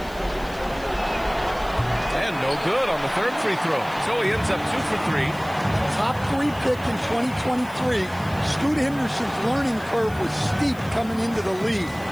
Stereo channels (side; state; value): left; noise; hiss, 22 dB below the sound